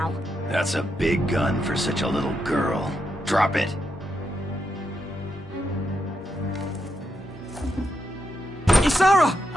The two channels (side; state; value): both; normal; correlation 0.83